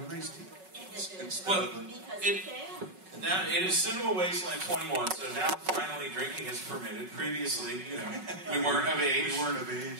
an iced tea. Now it is Cinema Wasteland 21, so now finally drinking is permitted. Previously, you know, we weren't of age.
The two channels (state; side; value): late; left; 5.4 ms